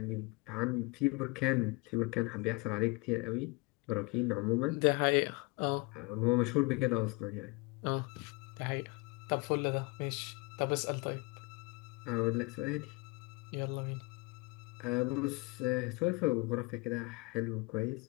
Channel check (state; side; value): quieter; right; 27.0 dB